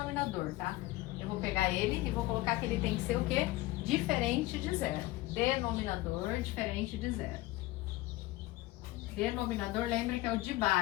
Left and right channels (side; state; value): right; quieter; 18.4 dB